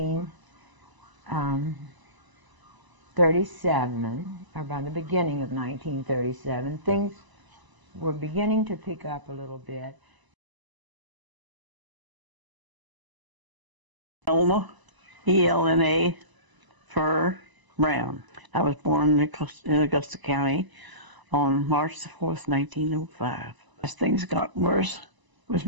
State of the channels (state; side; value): late; left; 1.0 ms